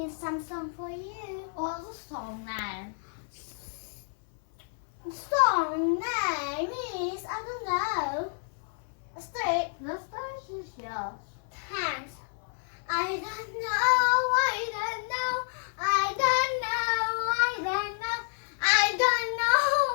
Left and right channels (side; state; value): right; silent; 58 dB below the other